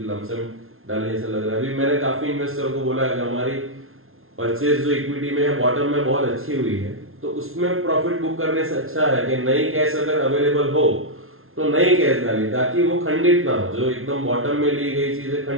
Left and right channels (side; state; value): left; late; 0.61 ms